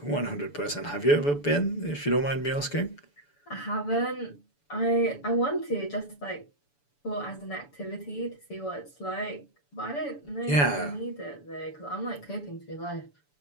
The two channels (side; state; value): right; late; 6.9 ms